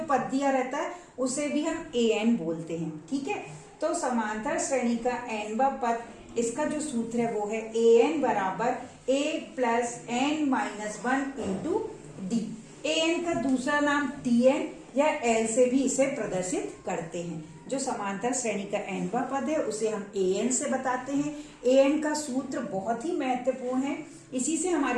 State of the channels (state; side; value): identical; both; correlation 1.00